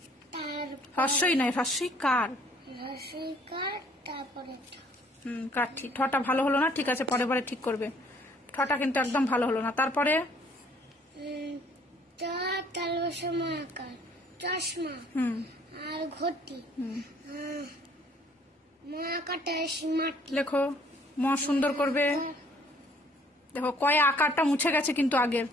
হ্রস্বই নয়, হ্রস্বইকার। তারপরে কাঠি। ঠটা ভালো হলো না, ঠিক আছে, পরে পরে ঠিক করবে। ঠটা কিন্তু একদম ভালো হলো না। তারপরে আকার চশমা আর ঘটি মাকাটা মাটি লেখো, ম সুন্দর করবে। দেখো কয়ে আকারটা মুছে গেছে, কিন্তু আগের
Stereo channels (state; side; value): normal; both; correlation 0.59